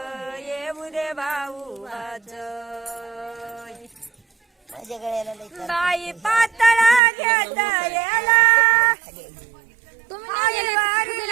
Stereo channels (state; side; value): drops out; left; at 7.0 s